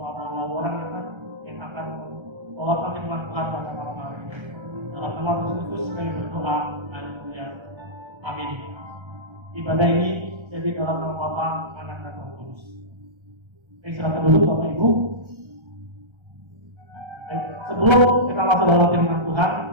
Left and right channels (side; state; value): left; late; 1.3 ms